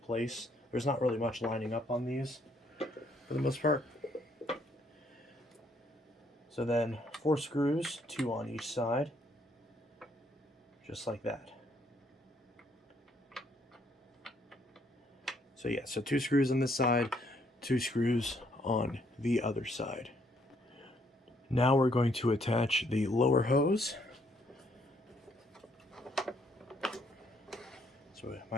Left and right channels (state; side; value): normal; both; correlation 0.69